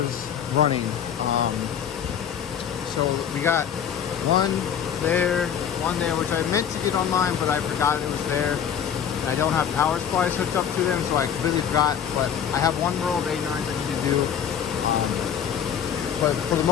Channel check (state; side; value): quieter; right; 8.5 dB